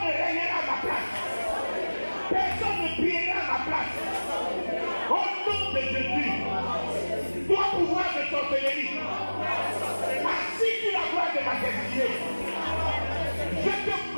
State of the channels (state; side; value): inverted; both; correlation -1.00